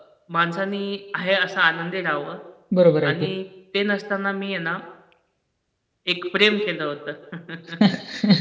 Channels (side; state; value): both; identical; correlation 1.00